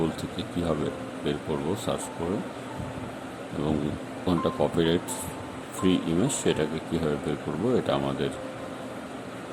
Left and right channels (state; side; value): identical; both; correlation 1.00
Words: থেকে কীভাবে বের করব সার্চ করে, এবং কোনটা কপিরাইট ফ্রি ইমেজ সেটাকে কীভাবে বের করব এটা আমাদের